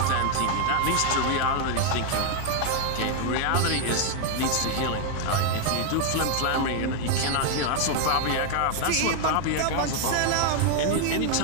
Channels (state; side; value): different; both; correlation 0.01